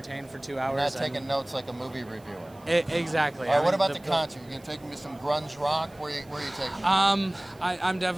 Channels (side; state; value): right; noise; hiss, 28 dB below the sound